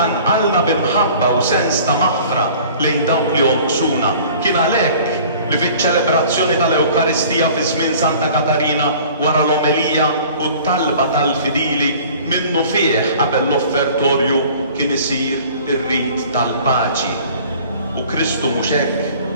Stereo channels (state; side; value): inverted; both; correlation -0.48